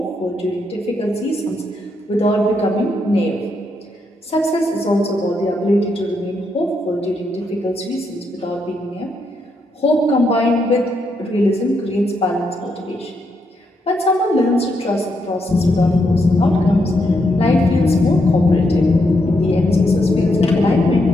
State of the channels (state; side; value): normal; both; correlation 0.79